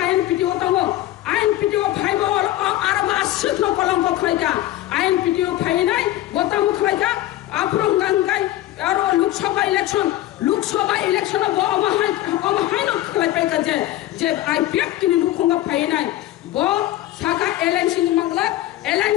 आईएनपीटीओ दङो आईएनपीटीओ फाइबो आरो बासिनो कलंक खलायगा आईएनपीटीओ फाइनाय गतामु खलायगा आपरो गांगाय आरो लोकसभा इलेक्शन बो अमहाय न खलायपायगा जे आईपीएफ तिनि लुखंगा फाइनाय बो साका एलएनसी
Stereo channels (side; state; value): right; quieter; 14.9 dB